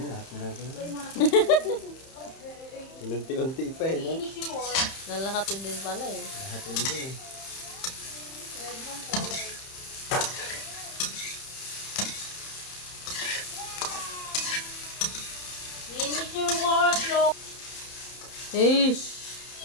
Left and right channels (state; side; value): late; right; 31 ms